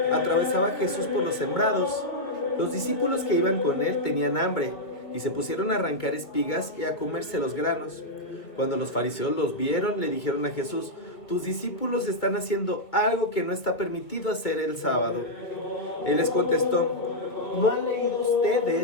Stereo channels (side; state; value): right; late; 2.0 ms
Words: atravesaba Jesús por los sembrados. Los discípulos que iban con él tenían hambre y se pusieron a arrancar espigas y a comerse los granos. Cuando los fariseos los vieron, le dijeron a Jesús: tus discípulos están haciendo algo que no está permitido hacer el sábado. Él les contestó: ¿no han leído